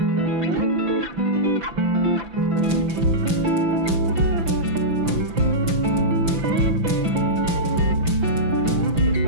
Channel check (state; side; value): late; left; 5.9 ms